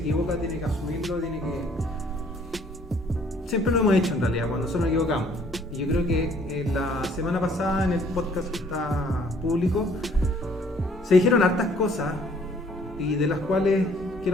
tiene que asumirlo, tiene que... Siempre lo hemos hecho en realidad, cuando nosotros nos equivocamos. Y yo creo que la semana pasada en el podcast que está público se dijeron hartas cosas y de las cuales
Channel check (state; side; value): normal; both; correlation 0.60